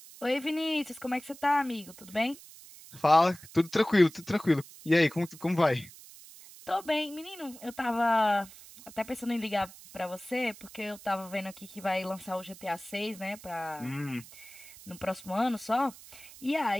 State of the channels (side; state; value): right; noise; hiss, 19 dB below the sound